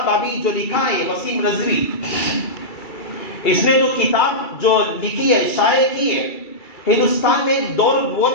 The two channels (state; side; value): late; right; 2.3 ms